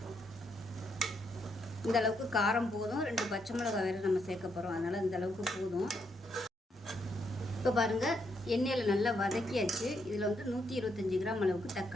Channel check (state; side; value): normal; both; correlation 0.77